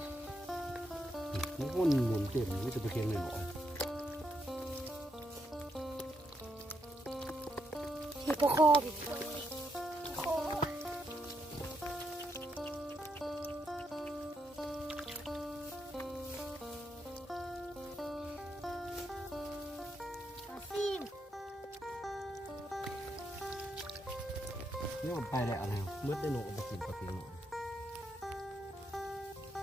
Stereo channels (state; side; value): normal; both; correlation 0.79